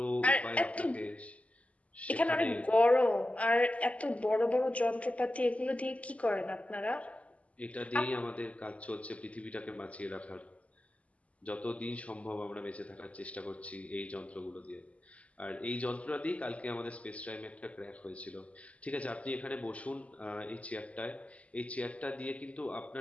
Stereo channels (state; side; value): late; right; 0.067 ms